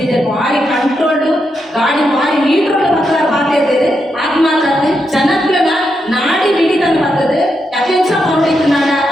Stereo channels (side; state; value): both; normal; correlation 0.83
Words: ಇದೆ ಭಾರಿ ಕಂಟ್ರೋಲ್ಡು ಗಾಡಿ ಭಾರಿ ಮೀಟರ್ ಪಾತ್ರ ಇರ್ತದೆ ಅದು ಮಾತ್ರ ಜನಗಳನ್ನ ನಾಡಿ ಬಿಡಿ ತಂದು ಬರ್ತದೆ ಯಥೇಚ್ಛ ಮಾಡಿದ್ದು ನಾಡ